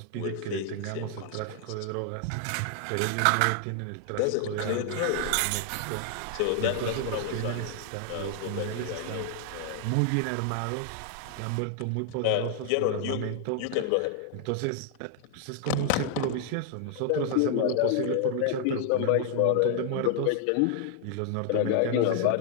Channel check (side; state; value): both; different; correlation 0.00